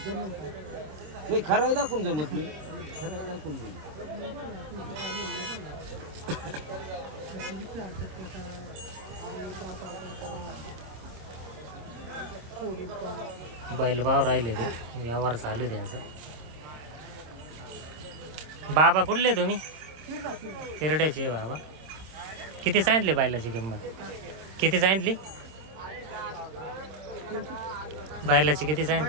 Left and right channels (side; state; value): left; late; 26 ms